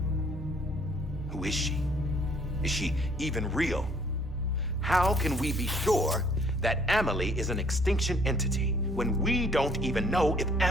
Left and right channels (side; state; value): both; normal; correlation 0.61